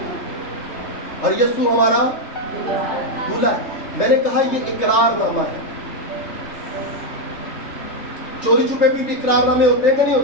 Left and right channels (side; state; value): right; late; 3.3 ms